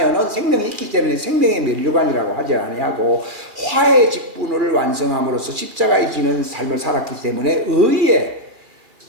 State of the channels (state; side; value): late; left; 2.3 ms